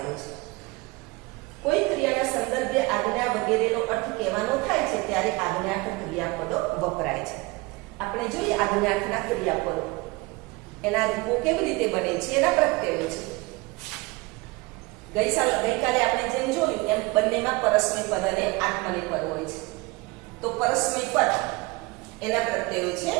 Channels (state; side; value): quieter; left; 24.2 dB